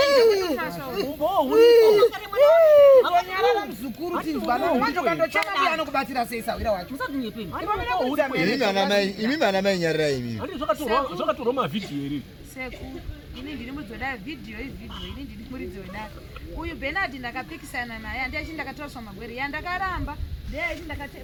mzukuru tinzwana wacho kandochana biyano kubatira seisa wira wacho imi mana mai nyarira imi andi zvakatorwa mavidhiyo iri seku ini ndiri mudzoda video ini ndiri muridzi wedare uyu Bernard ndakapikisana naye handiachi ndakatoraswa magwere yandakaramba ndeyaiti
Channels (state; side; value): identical; both; correlation 1.00